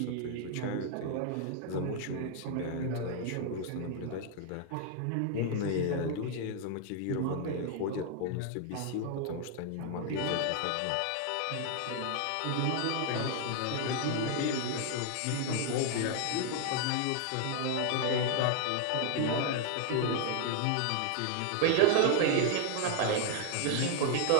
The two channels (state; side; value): different; both; correlation 0.00